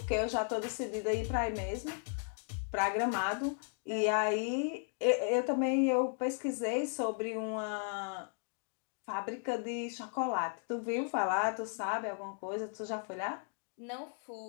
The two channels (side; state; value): right; silent; 54 dB below the other